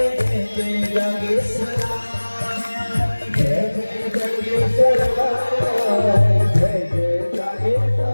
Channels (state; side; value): inverted; both; correlation -1.00